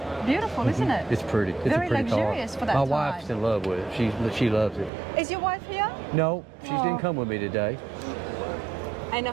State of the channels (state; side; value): drops out; left; at 4.9 s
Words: beautiful, isn't it? It's pretty. It's Very a pretty luxurious car. for that My time. wife's in love with it. She loves it. Is your wife here? No, she Oh. didn't come with me today. And